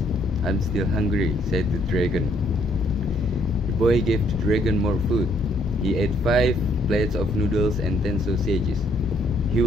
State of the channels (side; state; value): both; normal; correlation 0.67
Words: "I'm still hungry," said the dragon. The boy gave the dragon more food. He ate 5 plates of noodles and 10 sausages. He